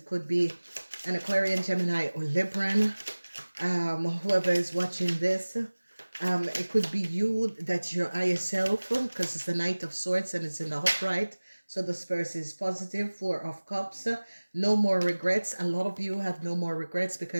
could be an Aquarian, Gemini, or Libran. Whoever is watching this, it could be you, that you're yourself, because it's the Knight of Swords and it's in the upright. So this person is positive. Four of Cups. No more regrets. A lot of you have no more regrets,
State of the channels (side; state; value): both; inverted; correlation -1.00